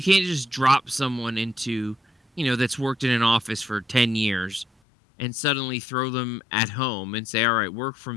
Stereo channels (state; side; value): drops out; right; at 4.7 s